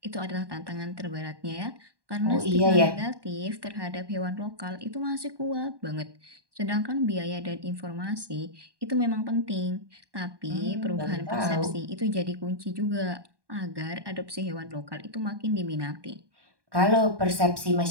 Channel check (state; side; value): late; left; 1.2 ms